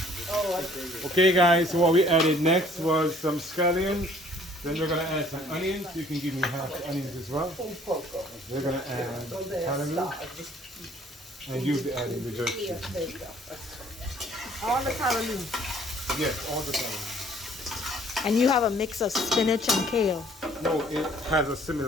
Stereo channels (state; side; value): normal; both; correlation 0.57